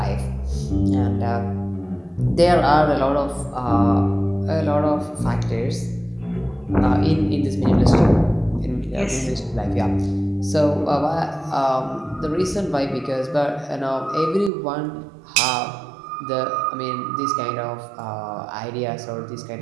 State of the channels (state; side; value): drops out; left; at 14.5 s